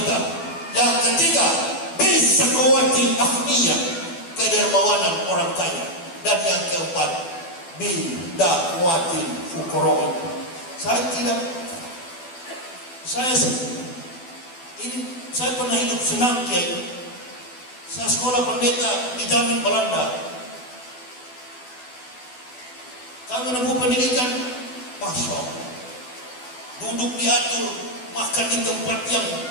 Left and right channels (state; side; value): late; right; 12 ms